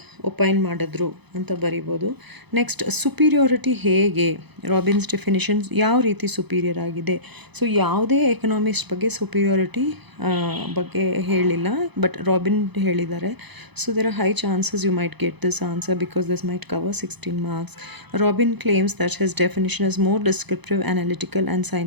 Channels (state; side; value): late; left; 0.99 ms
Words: ಒಪೈನ್ ಮಾಡಿದ್ರು ಅಂತ ಬರಿಬೋದು. ನೆಕ್ಸ್ಟ್, ಸುಪೀರಿಯಾರಿಟಿ ಹೇಗೆ, ರಾಬಿನ್ಸ್ ಡೆಫಿನೇಷನ್ಸ್ ಯಾವ ರೀತಿ ಸುಪೀರಿಯರ್ ಆಗಿದೆ. ಸೊ ಯಾವುದೇ ಎಕನಾಮಿಸ್ಟ್ ಬಗ್ಗೆ ಸುಪೀರಿಯಾರಿಟಿ ಬಗ್ಗೆ ಹೇಳಿಲ್ಲ, ಬಟ್ ರಾಬಿನ್ ಹೇಳಿದ್ದಾರೆ. So there are high chances you might get this answer because this might cover 16 marks. Robin claims that his definition is more descriptive, analytical and